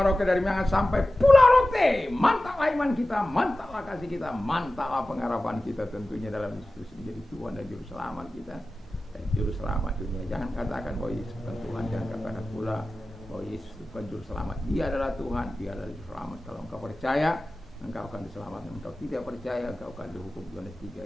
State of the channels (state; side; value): normal; both; correlation 0.95